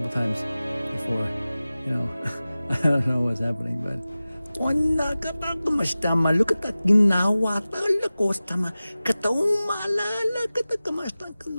times before. You know, I don't know what's happening, but Ona kapag kumastama, look at that ginawa, pala ko stama, kataong maalala, katakamastang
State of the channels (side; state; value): both; inverted; correlation -0.97